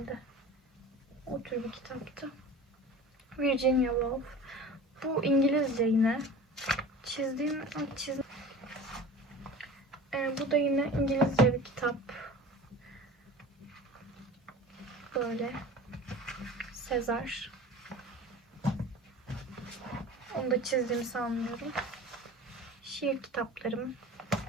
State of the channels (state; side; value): normal; both; correlation 0.37